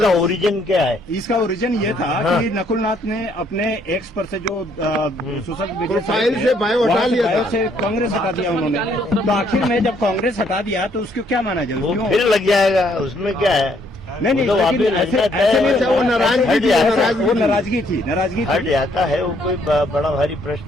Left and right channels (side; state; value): both; normal; correlation 0.68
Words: ओरिजिन क्या है? इसका ओरिजिन ये था कि नकुलनाथ ने अपने एक्स पर से जो सोशल प्रोफाइल से बायो हटा लिया था, से कांग्रेस हटा दिया उन्होंने। तो आखिर में जब कांग्रेस हटा दिया तो उसको क्या माना जाए? वो फिर लग जाएगा, उसमें क्या है? नहीं, तो ऐसे वो नाराजगी थी, हट जाता है। वो कोई बड़ा भारी